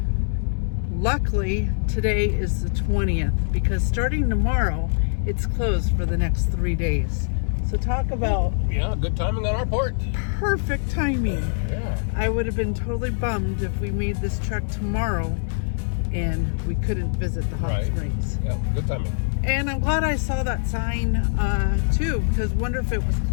Luckily, today is the 20th because starting tomorrow, it's closed for the next 3 days. So talk about Good timing on our part. perfect timing. Yeah. I would have been totally bummed if we made this trek tomorrow and we couldn't visit the hot springs. Yeah, good timing. And I'm glad I saw that sign too, because wonder if it was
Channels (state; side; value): silent; right; digital silence